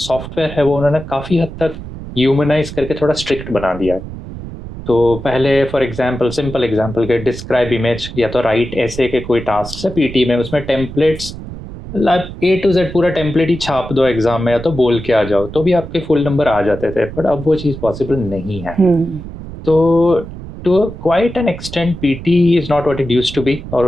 है वो उन्होंने काफ़ी हद तक ह्यूमनाइज करके थोड़ा स्ट्रिक्ट बना दिया है। तो पहले फॉर एग्जांपल, सिंपल एग्जांपल के डिस्क्राइब इमेज या तो राइट ऐसे के कोई टास्क है PT में, उसमें टेम्पलेट्स A to Z पूरा टेम्पलेट ही छाप दो एग्जाम में या तो बोल के आ जाओ, तो भी आपके फुल नंबर आ जाते थे। बट अब वो चीज़ पॉसिबल नहीं है। तो to quite an extent PT is not what it used to be, और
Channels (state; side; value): noise; right; rumble, 11 dB below the sound